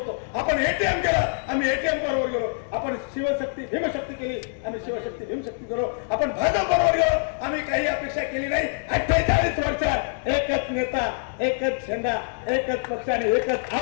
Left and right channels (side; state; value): right; silent; digital silence